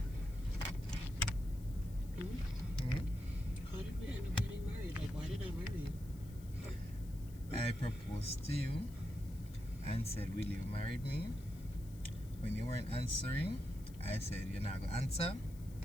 How did we end up getting married? Like, why did I marry you? I proposed to you and said, will you marry me? When you weren't answering, I said, you're not going to answer.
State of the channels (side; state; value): left; noise; hiss, 22 dB below the sound